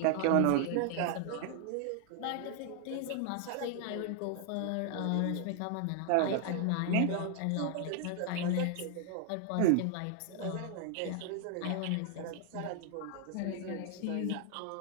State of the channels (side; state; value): both; different; correlation 0.00